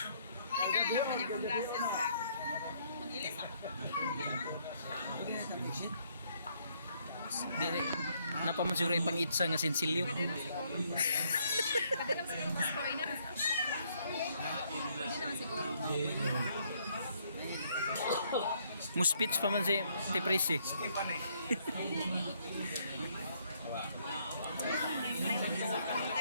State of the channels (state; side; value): inverted; both; correlation -0.69